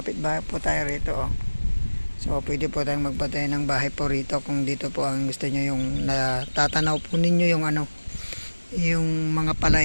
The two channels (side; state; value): both; inverted; correlation -1.00